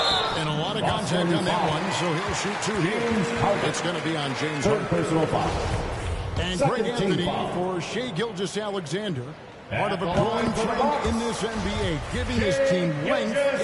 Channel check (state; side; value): identical; both; correlation 1.00